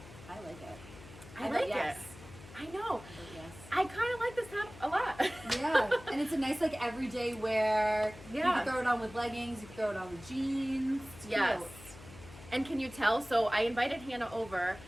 I like it. I like yes. it. I know. Yes. I kind of like this top a lot. Yeah, and it's a nice like everyday wear. Yeah. You can throw it on with leggings. You can throw it on with jeans. It's Yes. cute. And can you tell? So I invited Hannah over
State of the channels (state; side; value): noise; left; hum, 18 dB below the sound